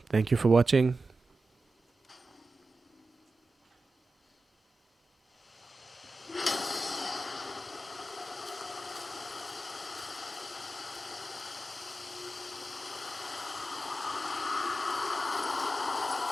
Thank you for watching.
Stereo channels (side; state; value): both; normal; correlation 0.93